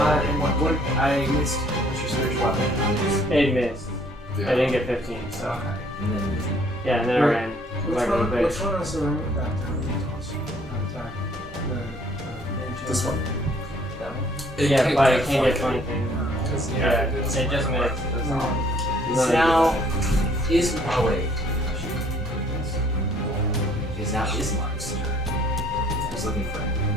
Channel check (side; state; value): both; normal; correlation 0.60